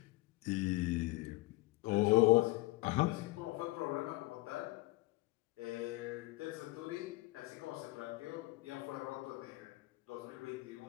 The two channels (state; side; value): quieter; right; 21.3 dB